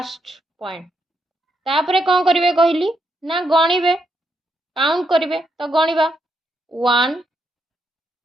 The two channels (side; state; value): both; normal; correlation 0.79